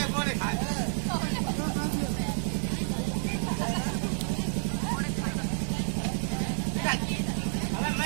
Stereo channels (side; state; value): left; silent; 58 dB below the other